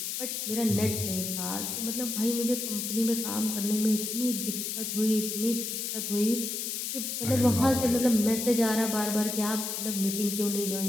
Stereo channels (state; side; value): noise; left; hiss, 3 dB below the sound